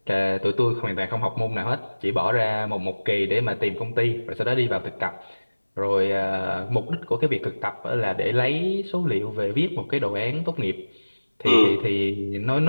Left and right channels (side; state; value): both; inverted; correlation -1.00